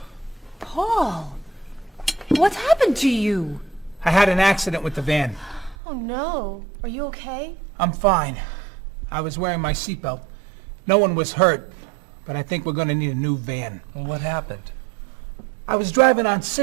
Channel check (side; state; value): left; drops out; at 5.8 s